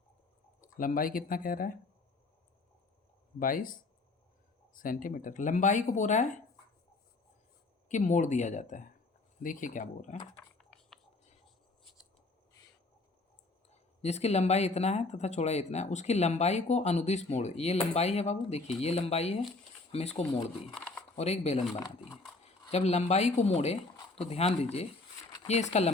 लंबाई कितना कह रहा है 22 सेंटीमीटर। लंबाई को बोल रहा है कि मोड़ दिया जाता है। देखिए क्या बोल रहा है, जिसकी लंबाई इतना है तथा चौड़ाई इतना है, उसकी लंबाई को अनुदिश मोड़। ये लंबाई है बाबू, देखिए ये लंबाई है, हम इसको मोड़ दिए और एक बेलन बना दिए। जब लंबाई को मोड़े तो ध्यान दीजिए, ये इसका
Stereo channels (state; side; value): quieter; right; 3.4 dB